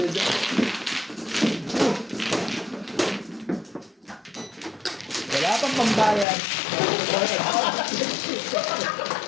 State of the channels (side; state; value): right; drops out; at 6.2 s